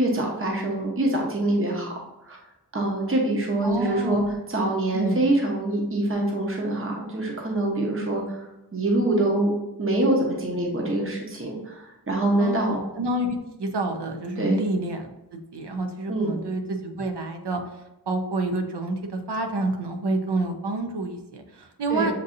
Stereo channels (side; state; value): both; normal; correlation 0.44